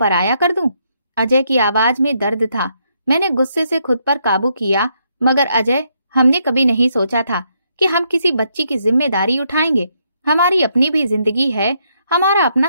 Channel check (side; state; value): both; inverted; correlation -0.76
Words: कर दूं? अजय की आवाज में दर्द था। मैंने गुस्से से खुद पर काबू किया, मगर अजय, हमने कभी नहीं सोचा था कि हम किसी बच्ची की जिम्मेदारी उठाएंगे। हमारी अपनी भी जिंदगी है, हमारा